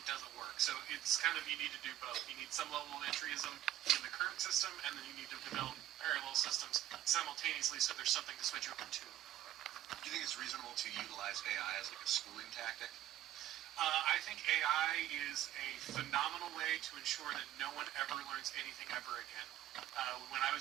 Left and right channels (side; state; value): left; quieter; 13.0 dB